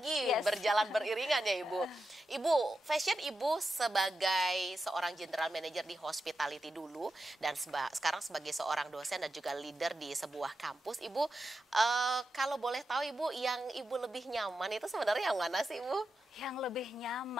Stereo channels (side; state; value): both; normal; correlation 0.89